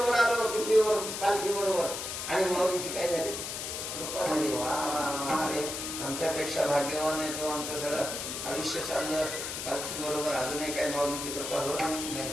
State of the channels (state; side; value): noise; left; hiss, 5 dB below the sound